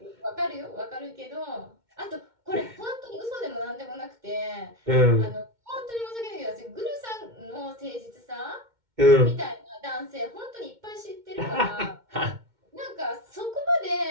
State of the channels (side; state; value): left; late; 2.2 ms